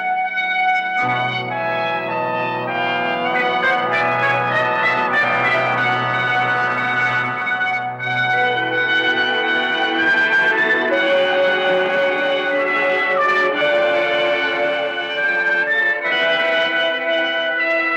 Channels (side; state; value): both; identical; correlation 1.00